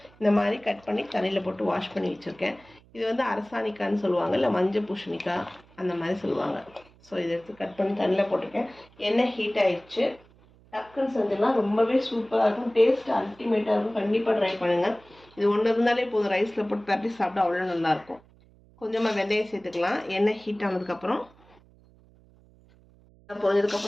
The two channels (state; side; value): noise; right; hum, 28 dB below the sound